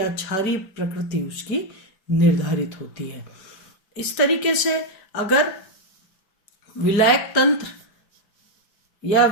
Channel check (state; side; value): late; right; 5.2 ms